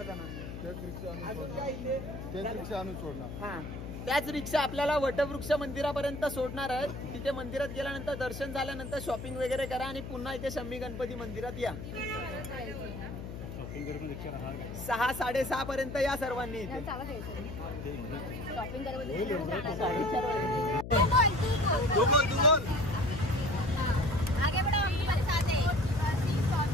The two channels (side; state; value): left; noise; hum, 9 dB below the sound